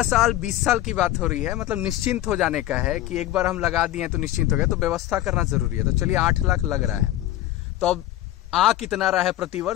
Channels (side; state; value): right; quieter; 14.5 dB